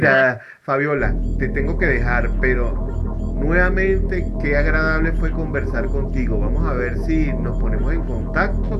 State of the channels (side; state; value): both; identical; correlation 1.00